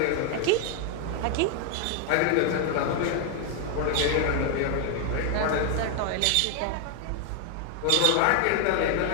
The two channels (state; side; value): different; both; correlation 0.01